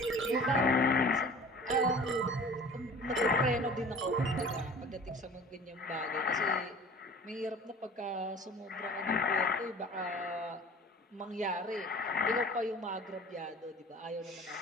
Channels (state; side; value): normal; both; correlation 0.43